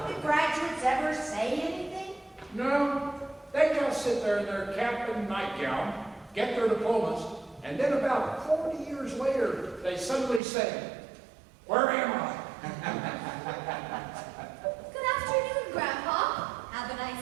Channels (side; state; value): left; drops out; at 10.4 s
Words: the graduates ever say anything? No, they just sit there in their cap and nightgown, get their diplomas, and then about 40 years later, they suddenly say, "Where am I?" Good afternoon, Grandpa. Have a